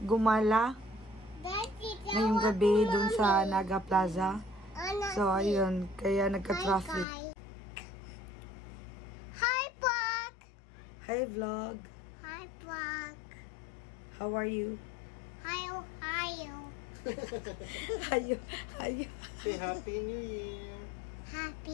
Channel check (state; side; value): drops out; right; at 7.1 s